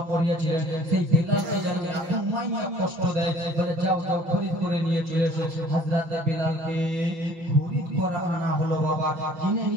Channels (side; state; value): left; late; 6.1 ms